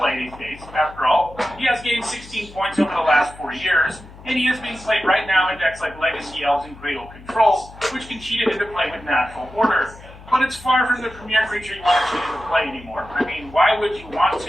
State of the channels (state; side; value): noise; left; hum, 19 dB below the sound